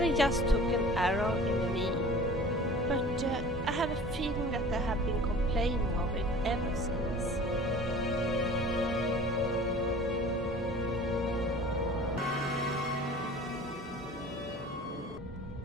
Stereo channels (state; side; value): normal; both; correlation 0.44